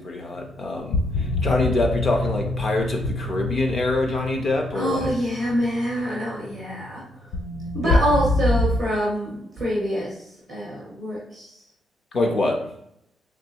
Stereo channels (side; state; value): both; normal; correlation 0.76